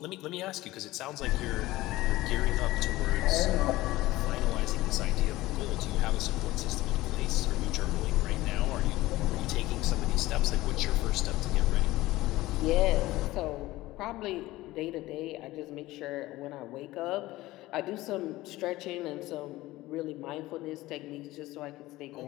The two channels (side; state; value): right; quieter; 17.8 dB